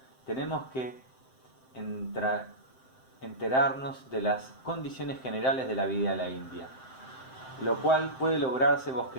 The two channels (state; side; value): late; right; 7.7 ms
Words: tenemos que enterarnos de las condiciones generales de la vida de la India, lo cual puede lograrse